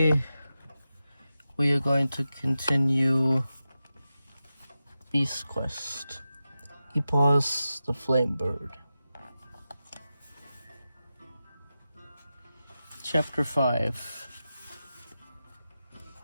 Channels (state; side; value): inverted; both; correlation -0.92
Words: we are going to continue Beast Quest EPOS the Flame Bird. Chapter 5.